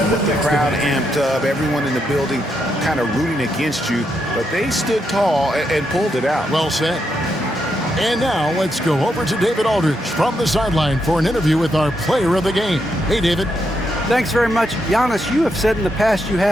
with the crowd amped up, everyone in the building kind of rooting against you, but they stood tall and pulled it out. Well said. And now let's go over to David Aldridge from the sideline for an interview with our player of the game. Hey, David. Thanks very much. Giannis, you have said in the past you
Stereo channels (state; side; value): normal; both; correlation 0.81